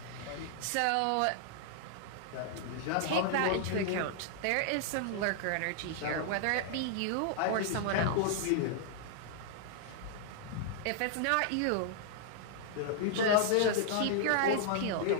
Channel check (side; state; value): both; different; correlation -0.01